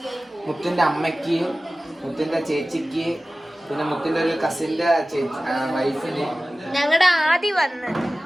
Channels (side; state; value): both; normal; correlation 0.97